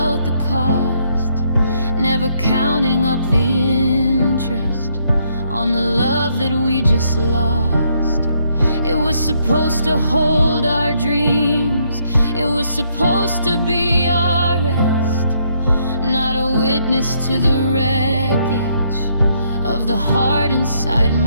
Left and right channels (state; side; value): inverted; both; correlation -0.72